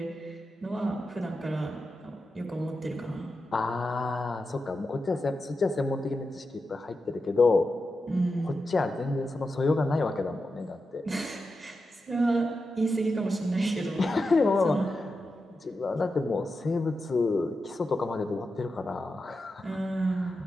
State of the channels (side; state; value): both; normal; correlation 0.89